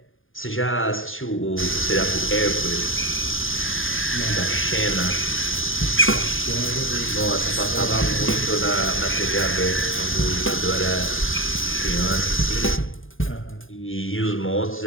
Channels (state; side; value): late; right; 0.59 ms